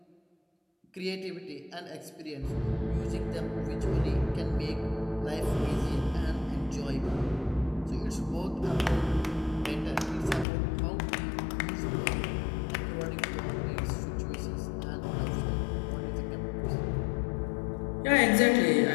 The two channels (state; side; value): drops out; right; at 10.5 s